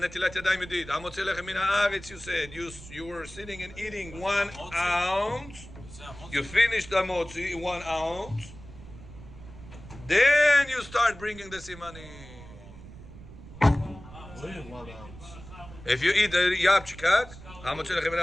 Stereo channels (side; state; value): right; noise; rumble, 16 dB below the sound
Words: ידיים ידיד, המוציא לחם מן הארץ, you said, you were sitting and eating 1 ounce, you finished the motzi in 1 ounce, then you start bringing the simanim. Only 1 ounce. If you eat the yapchikak, המוציא לחם מן